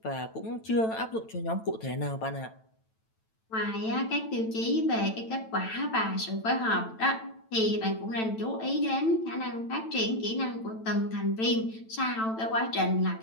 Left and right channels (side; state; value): right; late; 9.0 ms